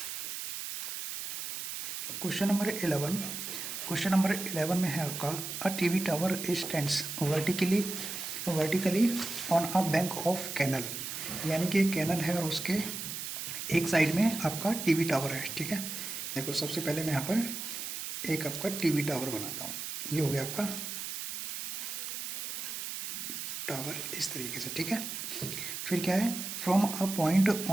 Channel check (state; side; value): noise; right; hiss, 6 dB below the sound